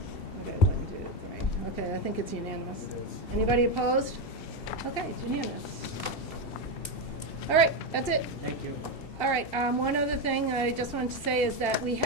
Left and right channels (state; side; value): late; right; 2.7 ms